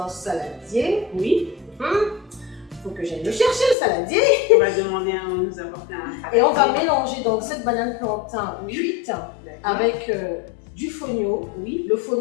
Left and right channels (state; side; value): drops out; right; at 3.8 s